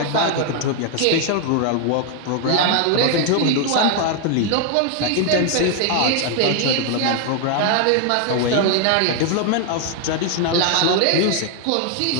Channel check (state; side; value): different; both; correlation 0.00